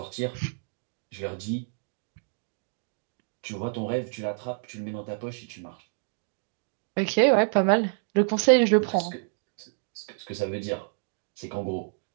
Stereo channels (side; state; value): left; silent; digital silence